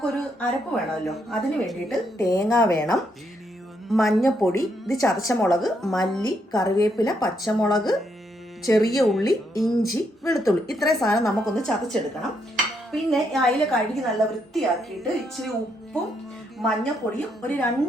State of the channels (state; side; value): normal; both; correlation 0.76